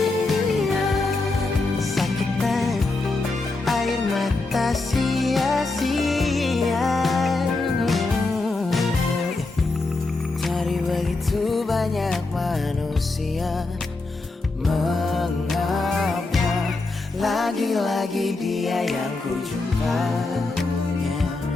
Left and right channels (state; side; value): quieter; right; 3.4 dB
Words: sakitan air mata sia-sia. Dari begitu banyak manusia, mengapa lagi-lagi dia yang ku jumpa?